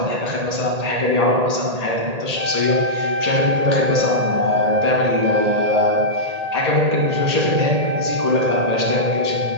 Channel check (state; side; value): late; left; 1.8 ms